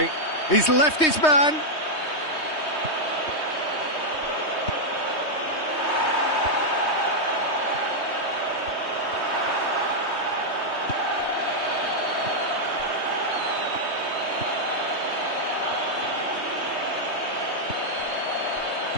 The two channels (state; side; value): late; right; 3.2 ms